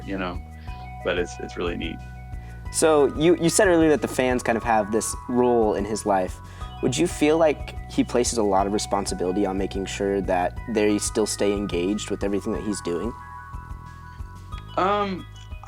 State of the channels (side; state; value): both; identical; correlation 1.00